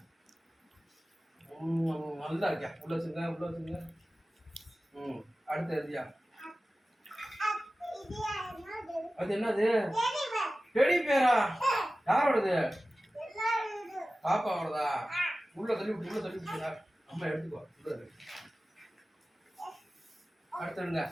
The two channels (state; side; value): normal; both; correlation 0.96